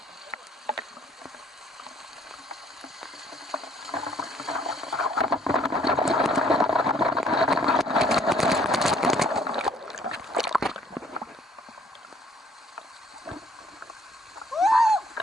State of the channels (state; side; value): normal; both; correlation 0.62